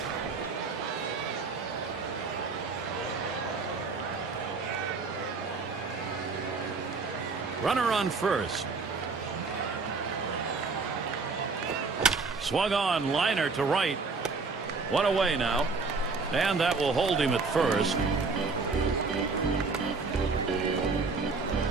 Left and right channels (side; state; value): left; quieter; 4.3 dB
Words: Runner on first. Swung on, liner to right. One away now. And that will hold him at first.